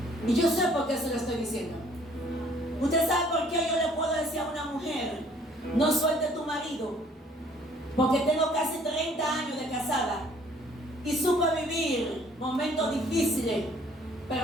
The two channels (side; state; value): both; normal; correlation 0.59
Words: Y yo sé por qué se lo estoy diciendo. Usted sabe por qué yo le puedo decir a una mujer: no suelte tu marido. Porque tengo casi 30 años de casada y supe vivir momentos difíciles,